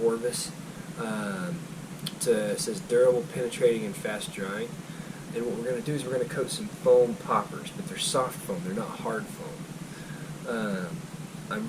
Orvis. It says durable, penetrating, and fast drying. And what we're going to do is we're going to coat some foam poppers, but they're soft foam, they're not hard foam. I'm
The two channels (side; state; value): both; identical; correlation 1.00